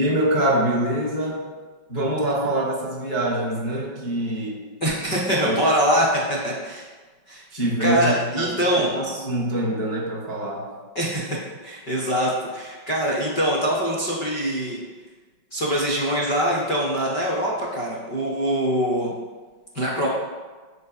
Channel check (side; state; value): right; late; 5.3 ms